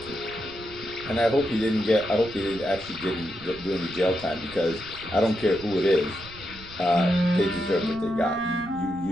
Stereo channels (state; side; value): noise; right; rumble, 18 dB below the sound